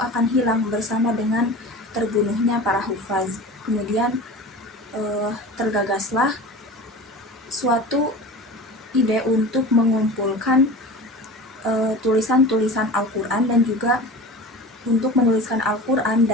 hilang bersama dengan terbunuhnya para hufaz. Kemudian tergagaslah suatu ide untuk mengumpulkan tulisan-tulisan Al-Quran dan juga untuk menuliskan Al-Quran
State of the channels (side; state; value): both; normal; correlation 0.35